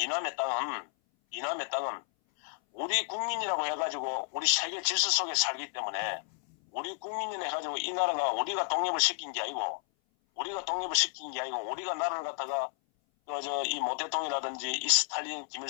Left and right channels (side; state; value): right; silent; 57 dB below the other